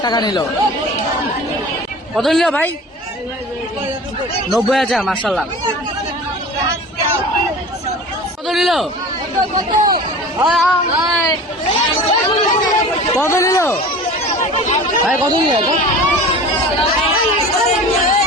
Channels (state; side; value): normal; both; correlation 0.38